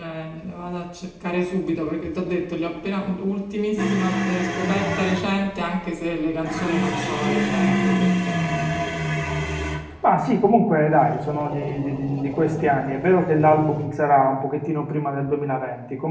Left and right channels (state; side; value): identical; both; correlation 1.00